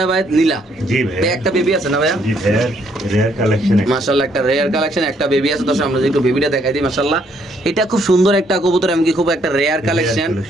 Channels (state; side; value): normal; both; correlation 0.69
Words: নীলা। জি ভাই, একটা বেবি আছে না ভাইয়া? জি ভাই, রেয়ার কালেকশন। মাশাআল্লাহ, একটা রেয়ার কালেকশন, একটা বেবি আছে। দর্শক আমরা একটু বেবিটা দেখাই দিই। মাশাআল্লাহ, এটা খুব সুন্দর একটা কবুতর, এমনকি খুব একটা রেয়ার কালেকশন